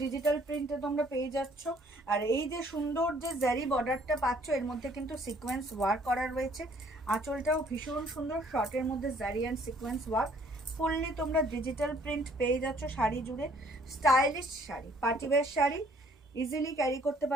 ডিজিটাল প্রিন্টে তোমরা পেয়ে যাচ্ছ। আর এই যে সুন্দর যে জারি বর্ডারটা পাচ্ছ, এর মধ্যে কিন্তু সিকোয়েন্স ওয়ার্ক করা রয়েছে। আঁচলটাও ভীষণ সুন্দর, শর্টের মধ্যে জারি অ্যান্ড সিকোয়েন্স ওয়ার্ক, ফুললি তোমরা ডিজিটাল প্রিন্ট পেয়ে যাচ্ছ শাড়ি জুড়ে। Stylish sari, party wear sari, easily carry করতে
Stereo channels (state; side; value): normal; both; correlation 0.60